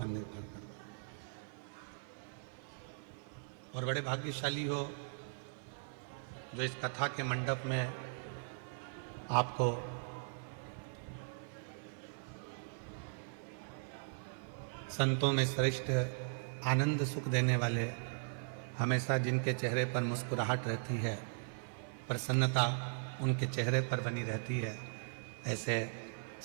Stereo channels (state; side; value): silent; left; 52 dB below the other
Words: निर्भर करता है। और बड़े भाग्यशाली हो जो इस कथा के मंडप में आपको संतों में श्रेष्ठ आनंद सुख देने वाले, हमेशा जिनके चेहरे पर मुस्कुराहट रहती है, प्रसन्नता उनके चेहरे पर बनी रहती है, ऐसे